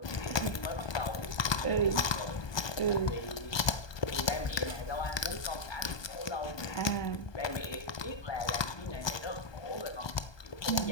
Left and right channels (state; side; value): late; right; 1.2 ms